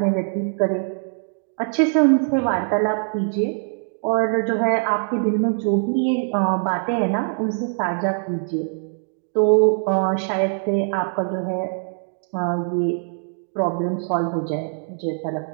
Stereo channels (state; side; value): silent; left; 64 dB below the other